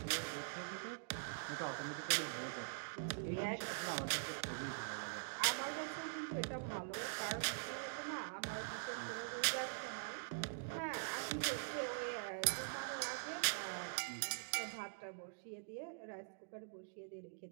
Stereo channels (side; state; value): left; silent; digital silence